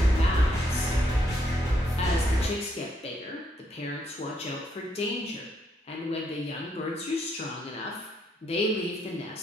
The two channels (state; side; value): normal; both; correlation 0.75